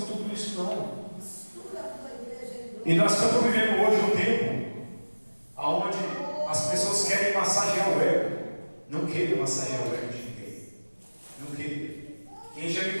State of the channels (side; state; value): both; inverted; correlation -1.00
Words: tudo isso, não. E nós estamos vivendo hoje um tempo onde as pessoas querem massagear o ego. Não queiram massagear o ego de ninguém. Não queiram. Quem já me